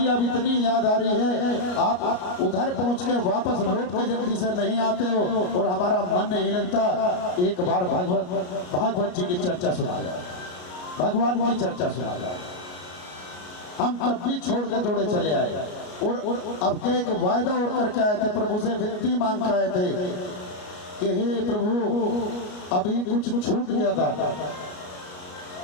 अब इतनी याद आ रही है, आप उधर पहुंच के वापस लौट के जल्दी से नहीं आते हो और हमारा मन नहीं लगता, एक बार भागवत जी की चर्चा सुना जाए, भगवान की चर्चा सुना जाए। हम तब भी छोड़ के दौड़े चले आए और अब के एक वायदा और करके आए थे, प्रभु से विनती मांग के आए थे कि हे प्रभु अभी कुछ छूट गया था,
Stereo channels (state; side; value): late; right; 33 ms